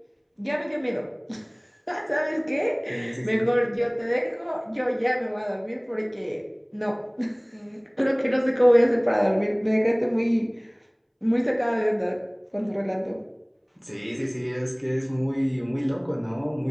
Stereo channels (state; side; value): identical; both; correlation 1.00